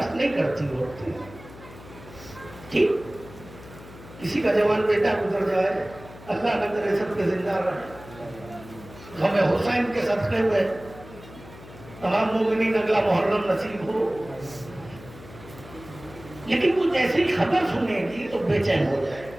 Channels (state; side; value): noise; left; hum, 18 dB below the sound